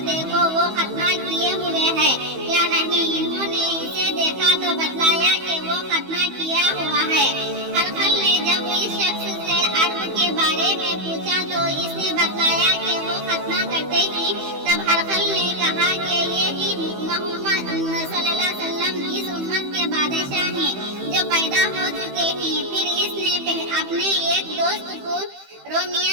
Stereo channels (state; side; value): late; left; 15 ms